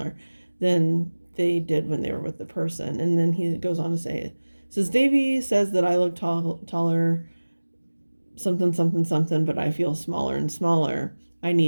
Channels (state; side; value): inverted; both; correlation -1.00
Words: than they did when they were with the person. And then he goes on to say, says, Davey says that I look taller, something, something, something, but I feel smaller and smaller. I